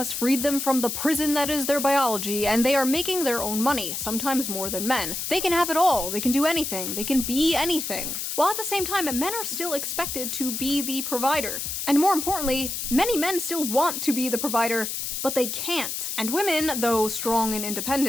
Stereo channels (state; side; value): noise; left; hiss, 4 dB below the sound